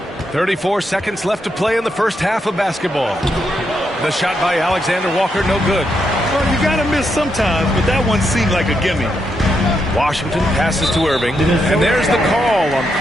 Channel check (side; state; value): both; normal; correlation 0.81